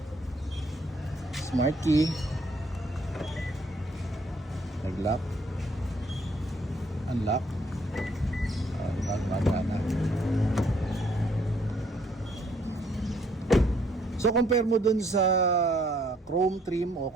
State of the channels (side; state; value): both; normal; correlation 0.66